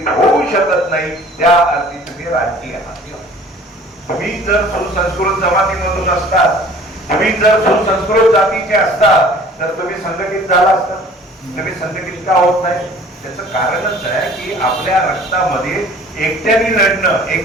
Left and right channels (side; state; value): both; normal; correlation 0.49